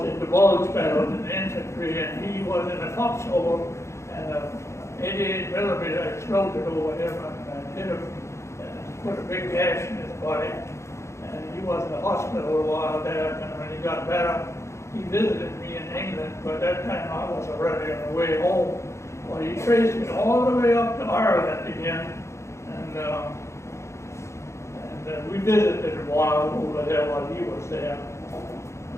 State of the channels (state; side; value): late; right; 0.14 ms